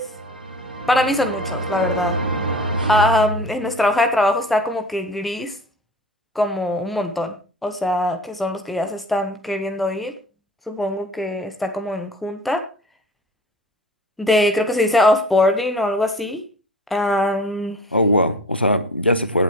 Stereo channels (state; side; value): normal; both; correlation 0.41